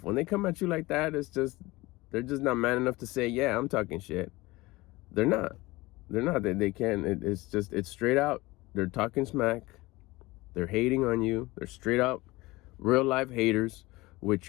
When they come at you like that, they're just not man enough to say, yeah, I'm talking shit. They're not. They can't. It's straight out. They're talking smack. They're hating on you. They're straight up real life haters, which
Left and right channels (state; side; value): quieter; right; 20.9 dB